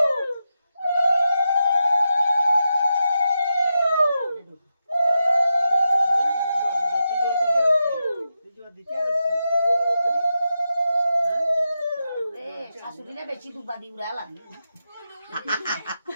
শাশুড়িরা বেশি দুবা দি উড়ালা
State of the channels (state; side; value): inverted; both; correlation -0.88